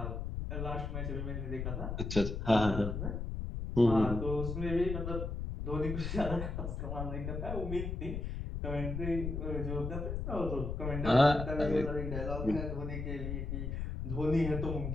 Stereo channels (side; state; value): left; noise; rumble, 4 dB below the sound